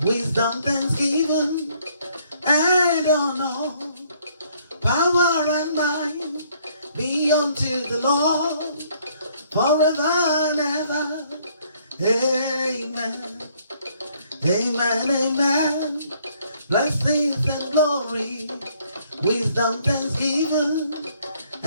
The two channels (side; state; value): both; inverted; correlation -0.65